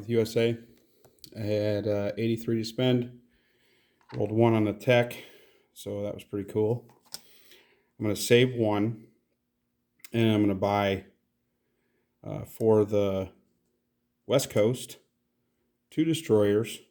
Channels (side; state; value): both; identical; correlation 1.00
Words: USA. I had 83 to spend. Rolled 1 on the tech, so that was pretty cool. I'm going to save 1, and I'm going to buy for the West Coast 2 destroyers,